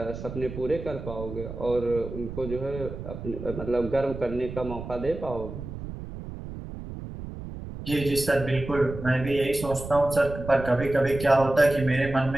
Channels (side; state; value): right; noise; rumble, 10 dB below the sound